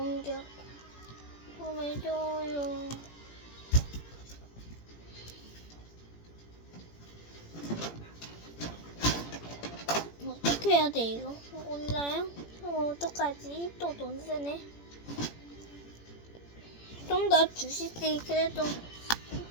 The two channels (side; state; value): right; late; 17 ms